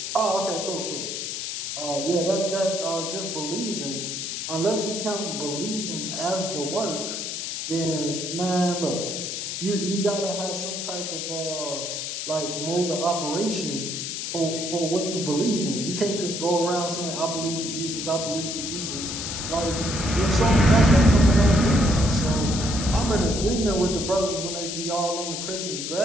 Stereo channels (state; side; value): noise; left; hiss, 4 dB below the sound